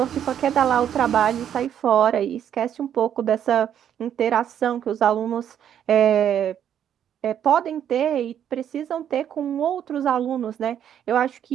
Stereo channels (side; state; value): left; quieter; 9.6 dB